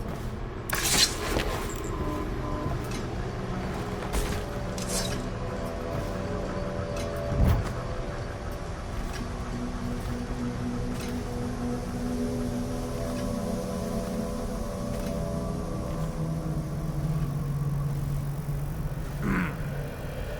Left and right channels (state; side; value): identical; both; correlation 1.00